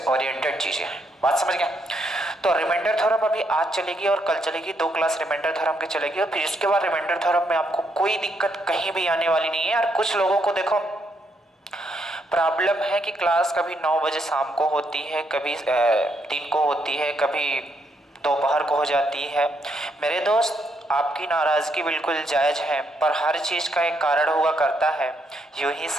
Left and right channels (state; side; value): normal; both; correlation 0.76